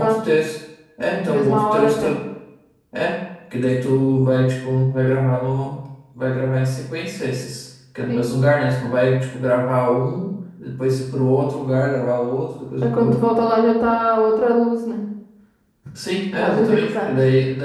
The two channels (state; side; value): identical; both; correlation 1.00